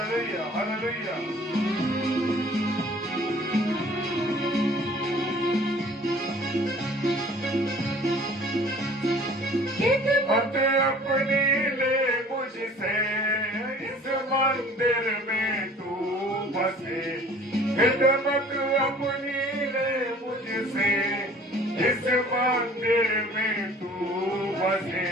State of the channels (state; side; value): normal; both; correlation 0.50